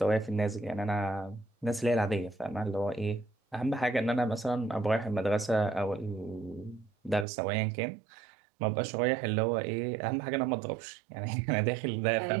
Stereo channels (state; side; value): drops out; left; at 7.2 s